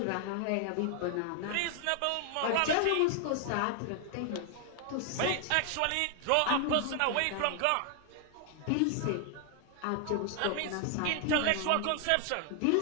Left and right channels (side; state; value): both; different; correlation 0.00